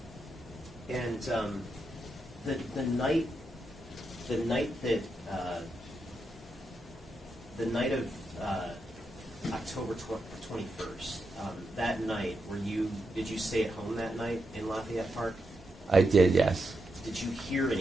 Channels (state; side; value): normal; both; correlation 0.85